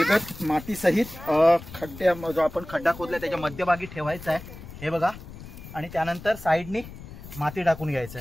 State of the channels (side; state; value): left; noise; rumble, 15 dB below the sound